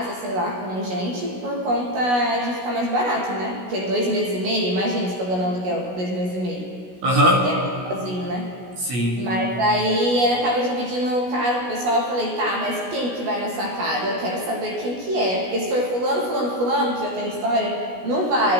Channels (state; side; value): late; left; 16 ms